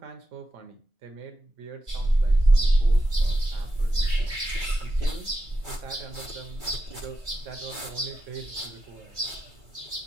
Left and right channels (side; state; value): left; late; 2.3 ms